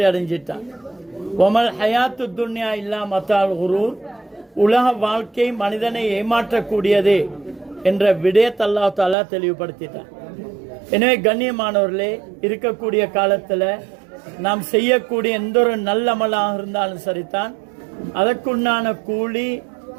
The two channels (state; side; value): drops out; left; at 9.2 s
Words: அடைஞ்சிட்டான். ஒமல் ஹயாத்து துன்யா இல்லா மத்தால் குரூர். உலக வாழ்க்கை மனிதனை ஏமாற்றக்கூடியது என்ற விடயத்தை அல்லாஹ் தஆலா தெளிவுபடுத்திட்டான். எனவே கண்ணியமானவர்களே, இருக்கக்கூடிய காலத்தில் நாம் செய்யக்கூடிய எந்த ஒரு நல்ல அமலாக இருந்தாலும் சரிதான், அதற்குண்டான கூலி